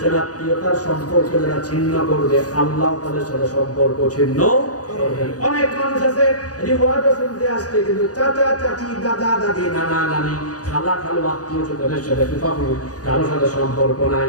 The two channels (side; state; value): right; late; 0.67 ms